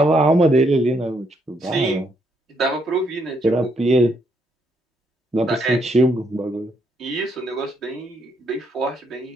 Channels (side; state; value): both; normal; correlation 0.74